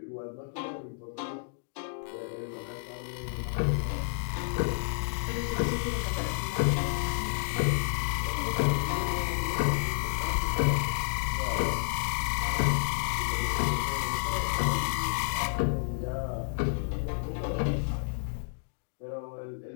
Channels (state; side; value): silent; right; digital silence